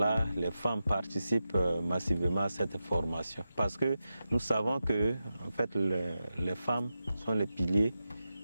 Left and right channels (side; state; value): both; inverted; correlation -0.91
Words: les femmes participent massivement à cette formation. Parce que nous savons que en fait, les femmes sont les piliers